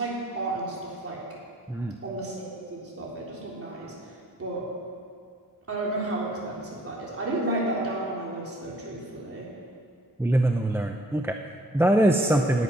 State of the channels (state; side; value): normal; both; correlation 0.60